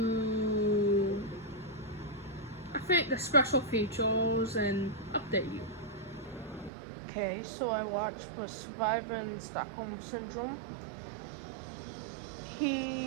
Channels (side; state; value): left; drops out; at 6.7 s